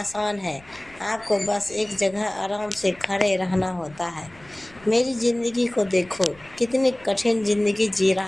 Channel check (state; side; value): noise; left; rumble, 25 dB below the sound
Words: है। आपको बस एक जगह आराम से खड़े रहना होता है। मेरी ज़िंदगी को देखो, कितनी कठिन ज़िंदगी जी